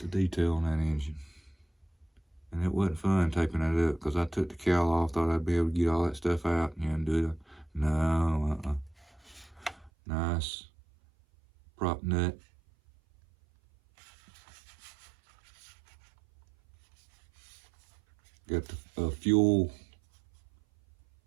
detail on that engine. And it wasn't fun taping that up because I took the cowl off, thought I'd be able to get all that stuff out and do it. No, Nice prop nut. Got the fuel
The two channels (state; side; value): drops out; left; at 9.9 s